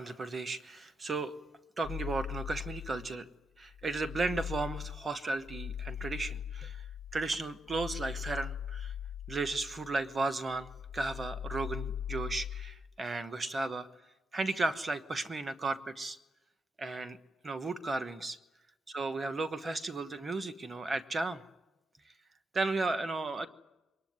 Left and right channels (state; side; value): normal; both; correlation 0.82